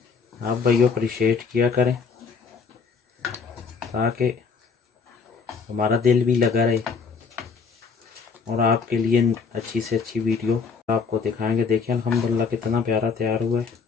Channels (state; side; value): quieter; right; 5.3 dB